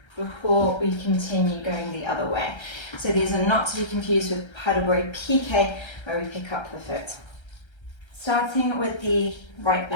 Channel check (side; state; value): right; late; 1.3 ms